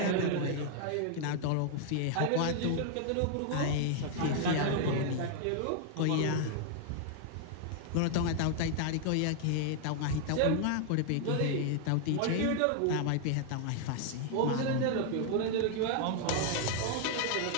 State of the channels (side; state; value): both; different; correlation 0.00